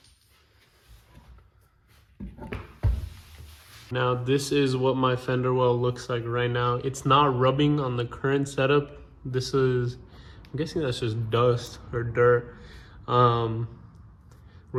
Now this is what my fender well looks like right now. It's not rubbing on the current setup. This is, I'm guessing that's just dust or dirt. We're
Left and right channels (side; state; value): both; identical; correlation 1.00